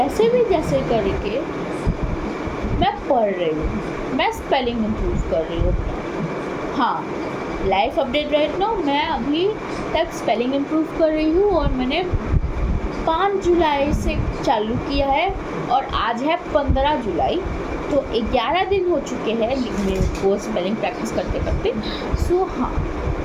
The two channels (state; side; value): identical; both; correlation 1.00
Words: करके मैं पढ़ रही हूँ, मैं स्पेलिंग इम्प्रूव कर रही हूँ। हाँ, लाइफ अपडेट राइट नाउ, मैं अभी तक स्पेलिंग इम्प्रूव कर रही हूँ, और मैंने 5 जुलाई से चालू किया है, और आज है 15 जुलाई, तो 11 दिन हो चुके हैं मेरे को स्पेलिंग प्रैक्टिस करते करते। सो हाँ